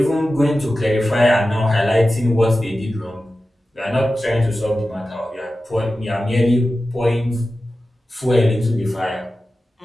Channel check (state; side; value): normal; both; correlation 0.94